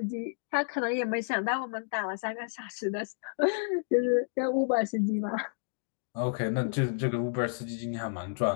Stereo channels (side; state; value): right; silent; digital silence